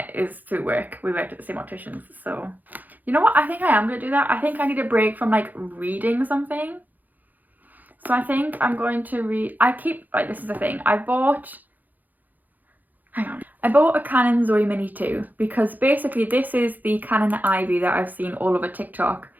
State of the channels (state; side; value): late; left; 0.083 ms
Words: is through work. We worked at the same opticians. So you know what, I think I am going to do that. I think I need a break from like reading something. So I think I'm going to read, this is the thing, I bought a Canon Zoe Mini 2 because basically this is the Canon Ivy that I've seen all over TikTok